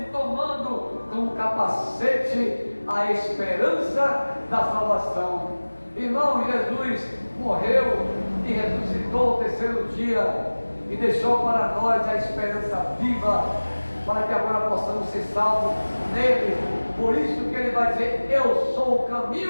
tomando como capacete a esperança da salvação. Irmão, Jesus morreu e ressuscitou o terceiro dia, e deixou para nós a esperança viva, para que agora possamos ser salvos nele. Por isso que ele vai dizer: eu sou o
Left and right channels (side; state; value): both; inverted; correlation -1.00